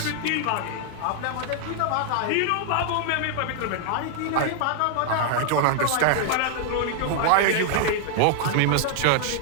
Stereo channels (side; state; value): both; different; correlation 0.00